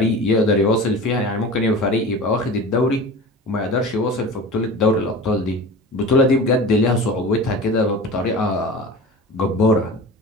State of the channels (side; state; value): both; normal; correlation 0.35